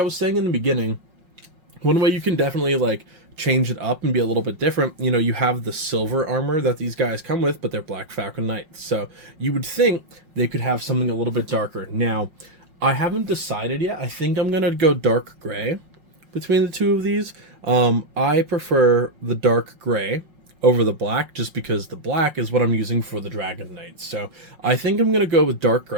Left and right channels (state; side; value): late; left; 5.5 ms